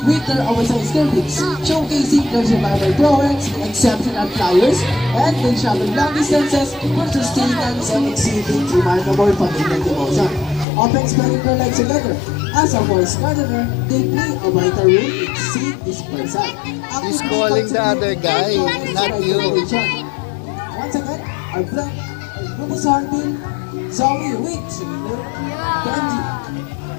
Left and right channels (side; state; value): right; drops out; at 10.7 s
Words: their oversized cervix, showcasing their survival prowess, exceptional flyers, and they travel long distances for sustenance and exhibiting remarkable familial devotion. Often spending their lives together. As a forest gardener, they play a vital role in seed dispersal. He's calling the other guy, not you. Once again, our friend, Rufous Hornbill, Zoe with Benji.